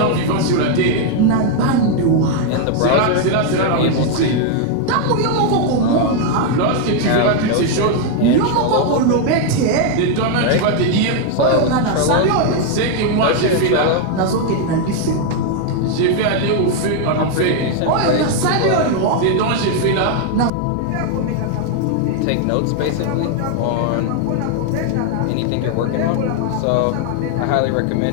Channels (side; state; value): both; different; correlation 0.00